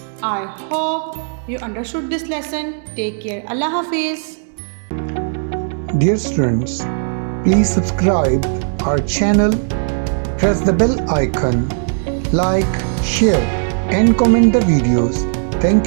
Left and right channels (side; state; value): left; silent; digital silence